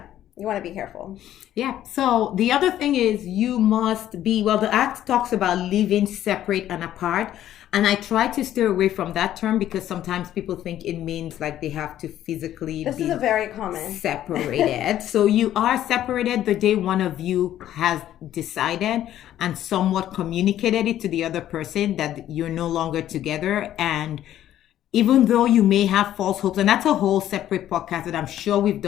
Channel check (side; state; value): right; quieter; 12.1 dB